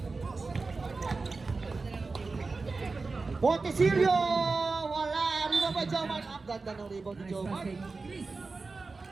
Montesilio! Wala! Rebound by Joman. Ang ganda ng rebound ni Joman.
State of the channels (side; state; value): left; quieter; 4.0 dB